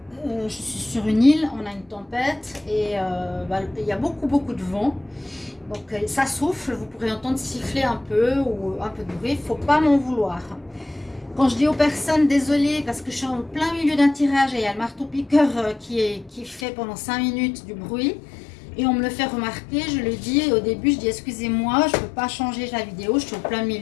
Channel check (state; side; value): drops out; right; at 16.7 s